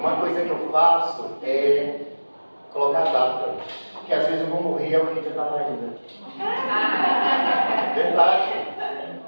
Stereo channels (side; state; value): both; inverted; correlation -1.00